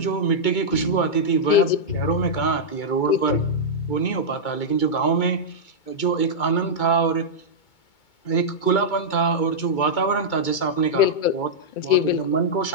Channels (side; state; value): right; late; 2.2 ms